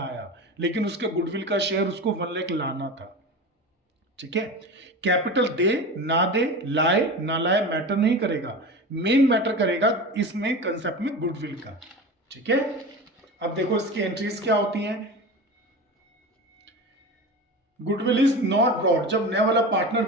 लेकिन उसके गुडविल का शेयर उसको 1 लाख लाना था। ठीक है, कैपिटल दे ना दे, लाए ना लाए मैटर नहीं करेगा, मेन मैटर करेगा इसमें कंसेप्ट में गुडविल का। ठीक है, अब देखो इसकी एंट्रीज क्या होती हैं। गुडविल इज नॉट ब्रॉट, जब नया वाला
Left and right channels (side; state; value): both; normal; correlation 0.29